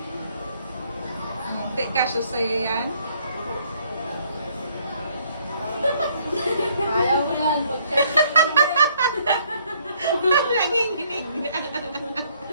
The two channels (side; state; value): both; inverted; correlation -0.65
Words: Di kasya sa'yo yan? Ayaw mo yan. Nanginginig na.